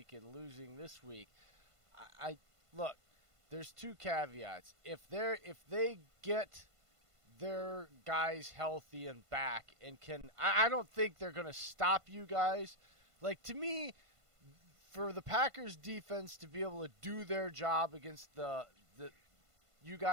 and losing this week. Look, there's two caveats. If they get their guys healthy and back and I don't think they're going to stop you guys. Like, to me, for the Packers defense to be able to do their job against the you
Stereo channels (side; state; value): left; late; 1.5 ms